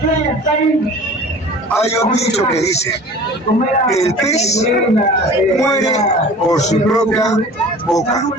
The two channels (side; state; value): both; normal; correlation 0.42